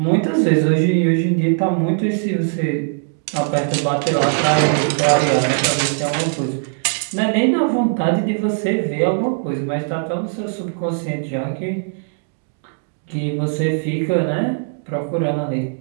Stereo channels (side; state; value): left; silent; digital silence